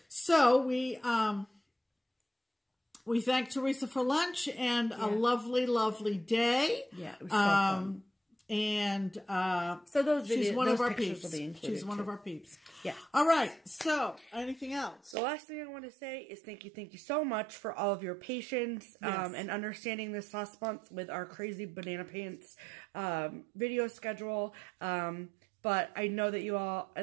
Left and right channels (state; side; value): drops out; left; at 15.2 s